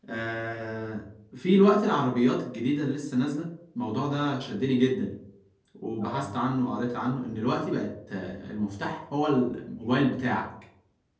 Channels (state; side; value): identical; both; correlation 1.00